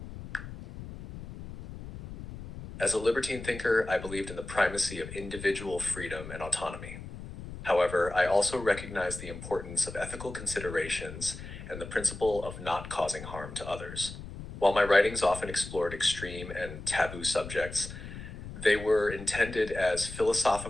As a libertine thinker, I believed in the primacy of individual freedom and autonomy. However, I also recognize the importance of ethical considerations and the principle of not causing harm to others. While my writings often explored extreme and taboo subjects, They were intended as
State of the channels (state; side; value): noise; left; rumble, 11 dB below the sound